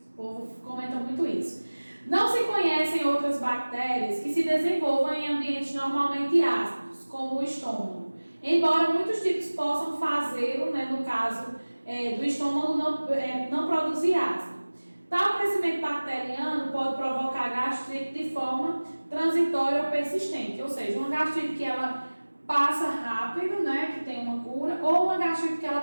O povo comenta muito isso. Não se conhecem outras bactérias que se desenvolvam em ambientes normalmente ácidos, como o estômago. Embora muitos tipos possam fazê-lo, né, no caso do estômago não produzir ácido. Tal crescimento bacteriano pode provocar gastrite de forma transitória ou persistente, ou seja, uma gastrite que ela passa rápido, né, que tem uma cura, ou uma gastrite que ela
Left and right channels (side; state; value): both; inverted; correlation -1.00